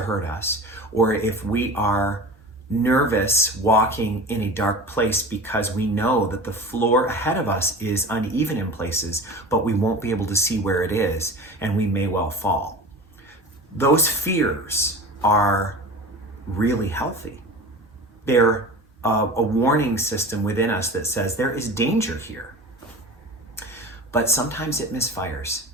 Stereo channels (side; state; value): both; normal; correlation 0.34